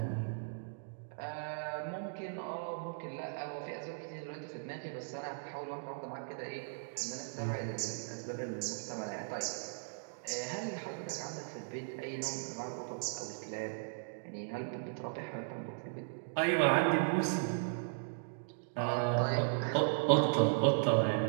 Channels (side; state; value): left; silent; digital silence